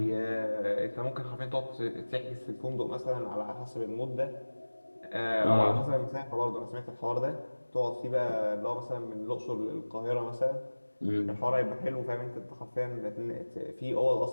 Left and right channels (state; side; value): inverted; both; correlation -1.00